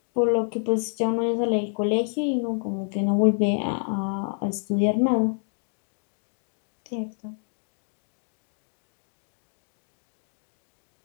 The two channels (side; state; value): right; silent; 56 dB below the other